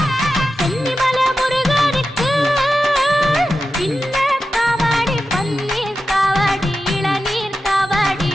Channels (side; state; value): both; normal; correlation 0.91